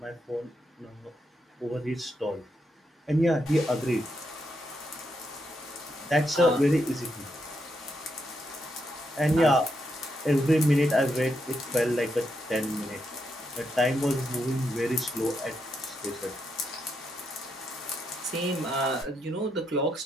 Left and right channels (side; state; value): both; normal; correlation 0.81